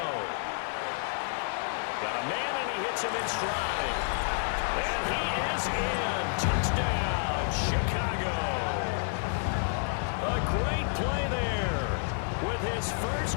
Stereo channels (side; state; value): right; silent; 58 dB below the other